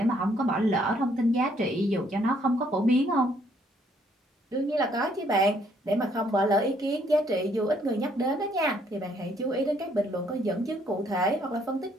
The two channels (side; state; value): both; normal; correlation 0.67